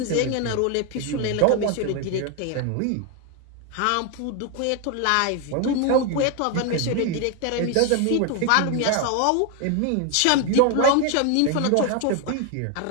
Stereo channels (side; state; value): both; different; correlation 0.01